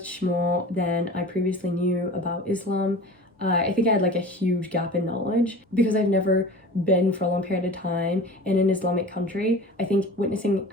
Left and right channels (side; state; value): both; normal; correlation 0.38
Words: more than I previously knew about Islam. I think I had like a huge gap in knowledge because I've never been for a long period of time in an Islamic country. I think witnessing